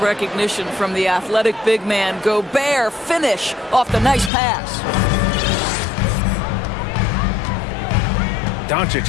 from the athletic big man. Gobert finish off the nice pass.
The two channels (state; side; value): drops out; right; at 4.3 s